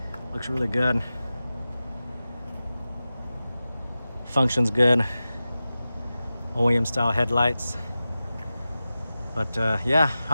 Looks really good. Functions good. OEM style headlights. But yeah,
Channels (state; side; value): inverted; both; correlation -0.94